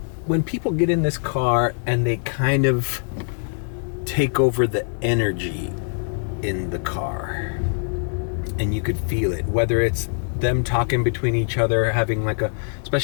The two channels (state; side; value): silent; right; digital silence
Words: people get in this car and they kind of take over the energy in the car, and you could feel it, whether it's them talking between each other, having like